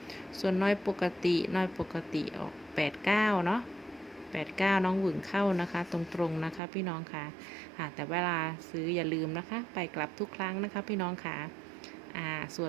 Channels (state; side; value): drops out; left; at 6.6 s